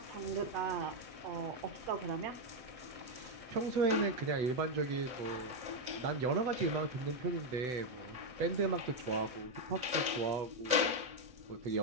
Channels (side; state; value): left; late; 8.0 ms